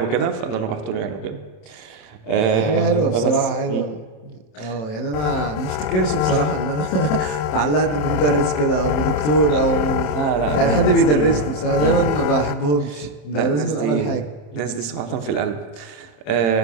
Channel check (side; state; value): right; late; 27 ms